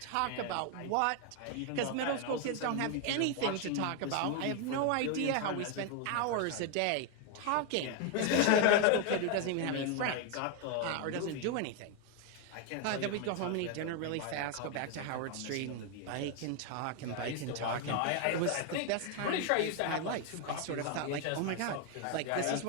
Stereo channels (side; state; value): both; different; correlation 0.01